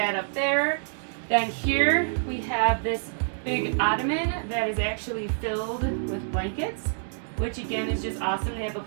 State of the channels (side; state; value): left; silent; 60 dB below the other